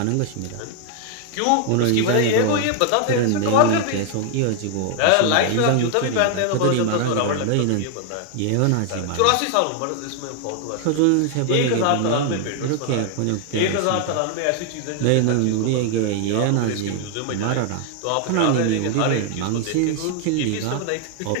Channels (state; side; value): different; both; correlation 0.00